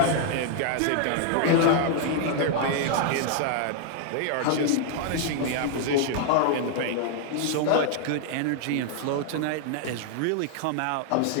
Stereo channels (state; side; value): different; both; correlation 0.00